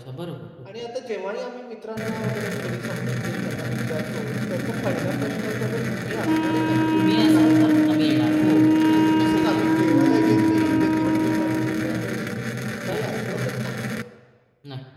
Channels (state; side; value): identical; both; correlation 1.00